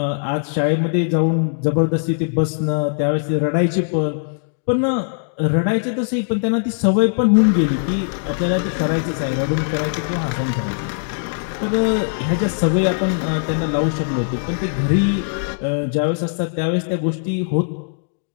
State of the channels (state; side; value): silent; right; digital silence